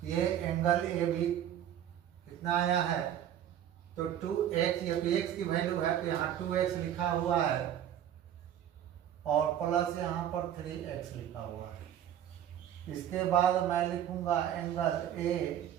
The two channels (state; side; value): quieter; left; 10.6 dB